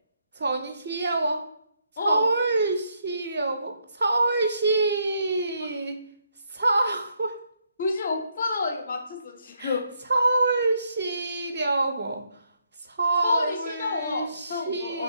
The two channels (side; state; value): both; inverted; correlation -0.75